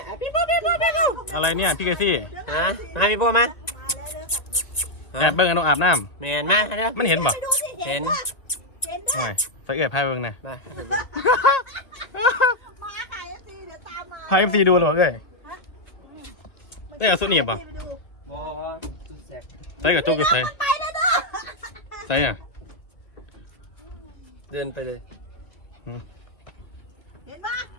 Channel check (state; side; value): late; right; 2.3 ms